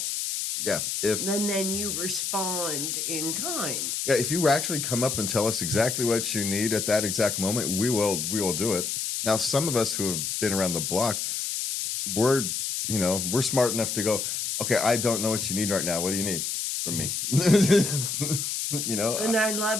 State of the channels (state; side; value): noise; left; hiss, 2 dB below the sound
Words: Yeah, And then you respond in kind. Yeah, if you actually come up and tell us exactly what you need at that exact moment, we will do it. Now, some of us who have been around the block, we're smart enough to go, okay, I don't know what you need right now. What do you need from me? And I